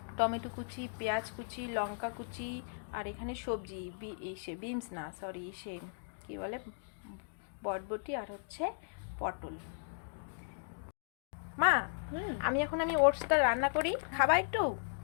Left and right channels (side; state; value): right; silent; digital silence